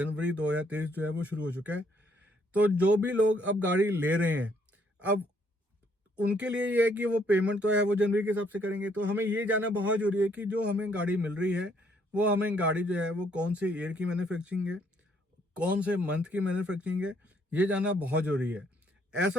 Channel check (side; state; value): both; normal; correlation 0.68